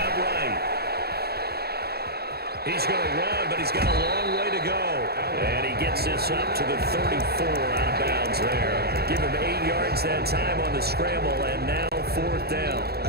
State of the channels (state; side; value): late; left; 0.46 ms